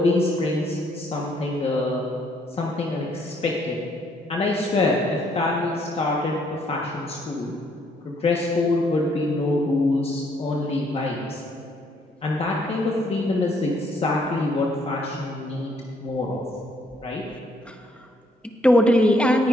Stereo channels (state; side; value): normal; both; correlation 0.68